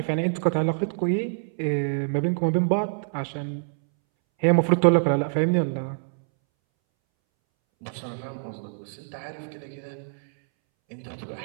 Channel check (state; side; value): silent; left; 61 dB below the other